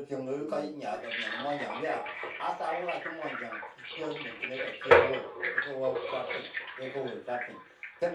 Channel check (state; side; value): identical; both; correlation 1.00